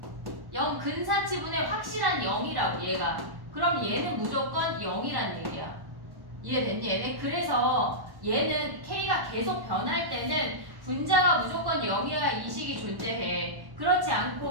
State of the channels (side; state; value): left; late; 1.1 ms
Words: 0 근사치분의 확실한 0이라고 얘가. 그럼 얘는 무조건 0이란 얘기야. 이해됐니 얘네? 그래서 얘는 k가 계속 변할 때는 분자가 무조건 0이어야 이 식이 존재해. 그렇지